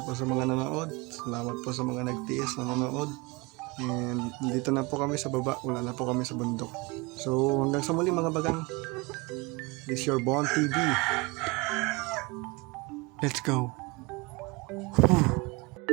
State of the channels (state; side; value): quieter; left; 25.9 dB